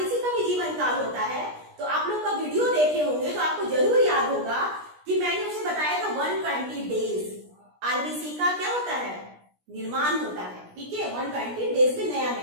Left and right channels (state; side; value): late; left; 17 ms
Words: का भी जीवन काल होता है, तो आप लोग का वीडियो देखे होंगे तो आपको जरूर याद होगा कि मैंने उसे बताया था 120 डेज। RBC का क्या होता है, निर्माण होता है। ठीक है, 120 डेज में नया